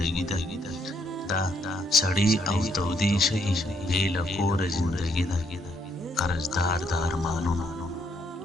ده دا سړی او تودې شي بې له کوره زندګي ده قرضدار د ارمانونو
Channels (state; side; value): normal; both; correlation 0.72